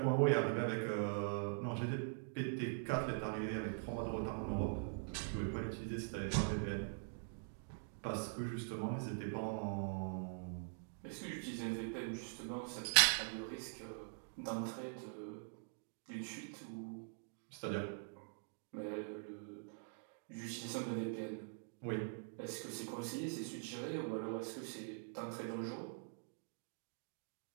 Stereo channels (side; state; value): left; silent; digital silence